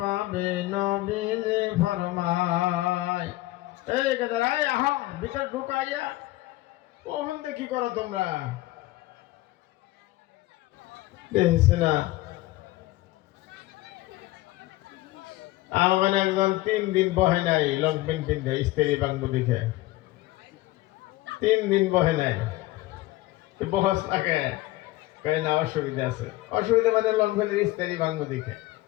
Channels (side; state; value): right; quieter; 18.1 dB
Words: নবীজি ফরমায়। এই গেদারাই আহ ভিতর ঢুকাইয়া কখন দেখি করো তোমরা দেখছি না। আমার একজন 3 দিন বহে নাই লং প্যান্ট পিন্ধে স্ত্রী বাংবু দেখে 3 দিন বহে নাই বহস থাকে কই না অসুবিধা আছে। অসুবিধা মানে লং প্যান্টের স্ত্রী বাংবু দেখে